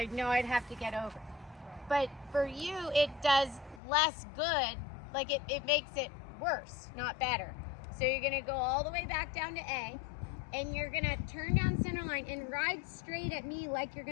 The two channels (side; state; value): right; drops out; at 3.8 s